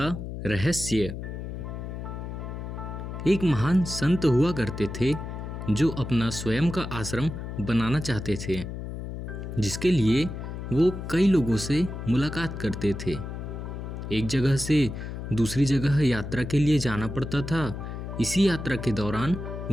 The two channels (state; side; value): noise; left; hum, 7 dB below the sound